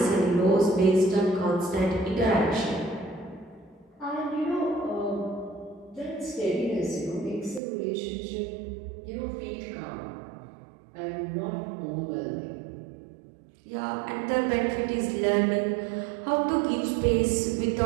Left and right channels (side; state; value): left; drops out; at 7.6 s